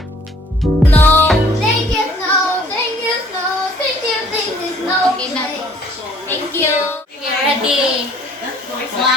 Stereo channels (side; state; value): both; normal; correlation 0.57